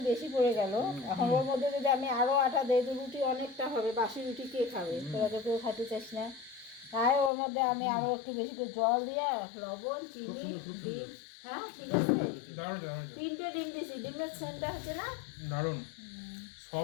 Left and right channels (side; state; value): right; drops out; at 7.3 s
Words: বেশি পড়ে গেল, এখন ওর মধ্যে যদি আমি আরো আটা দেই তো রুটি অনেকটা হবে, বাসি রুটি কে খাবে? তোরা তো কেউ খেতে চাস না। তাই ওর মধ্যে আমি আরো একটু বেশি করে জল দিয়ে লবণ, চিনি, ডিম। হ্যাঁ ঠিক আছে। 3টে ডিম দিছি, ডিমের সেন্টটা হচ্ছে না দারুণ